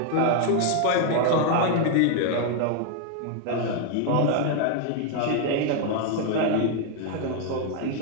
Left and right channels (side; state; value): both; different; correlation 0.01